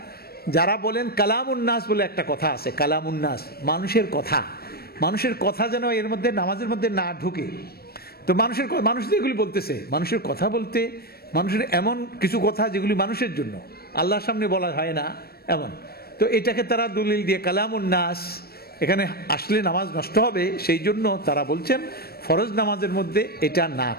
যারা বলেন কালামুন্নাস বলে একটা কথা আছে, কালামুন্নাস, মানুষের কথা যেন এর মধ্যে নামাজের মধ্যে না ঢুকে। তো মানুষ যেগুলি বলতেছে, মানুষের কথা বলতে, মানুষের এমন কিছু কথা যেগুলি মানুষের জন্য, আল্লাহর সামনে বলা হয় না এমন, তো এটাকে তারা দলিল দিয়ে কালামুন্নাস, এখানে আসলে নামাজ নষ্ট হবে, সেই জন্য তারা বলছেন ফরজ নামাজের মধ্যে এটা না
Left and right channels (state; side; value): late; right; 0.45 ms